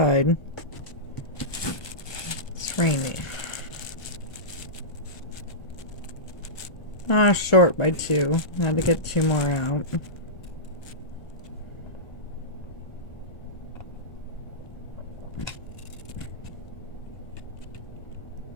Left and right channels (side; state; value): right; late; 1.4 ms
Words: It's rainy. Ah, short by 2. I had to get 2 more out.